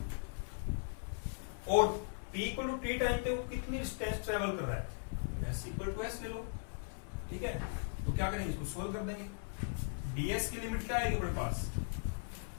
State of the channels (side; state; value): right; silent; 52 dB below the other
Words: और t equal to t time पे वो कितनी डिस्टेंस ट्रेवल कर रहा है, s इक्वल टू s ले लो। ठीक है, तो क्या करेंगे, इसको सोल्व कर देंगे। ds की लिमिट क्या आएगी अपने पास,